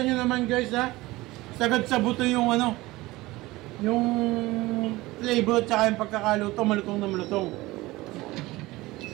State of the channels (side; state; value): left; quieter; 19.6 dB